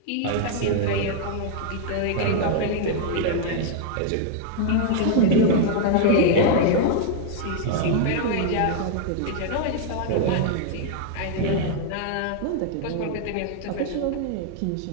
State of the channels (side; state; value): both; different; correlation 0.00